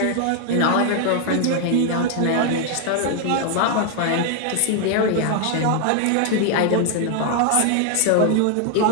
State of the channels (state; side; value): different; both; correlation 0.00